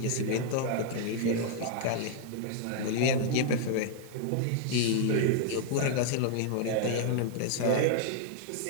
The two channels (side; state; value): both; different; correlation 0.00